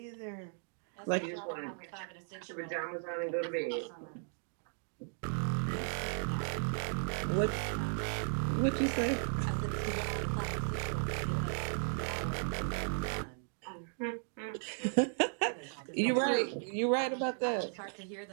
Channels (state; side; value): silent; left; 54 dB below the other